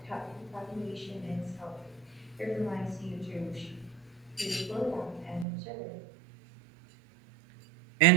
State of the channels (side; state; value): left; drops out; at 5.5 s